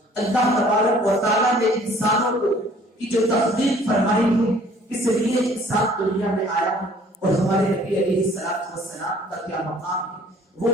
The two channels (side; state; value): both; normal; correlation 0.55